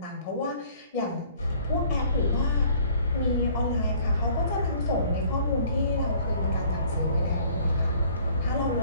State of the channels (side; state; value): both; inverted; correlation -0.55